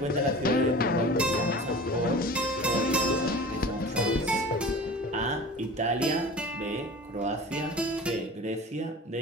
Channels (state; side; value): normal; both; correlation 0.38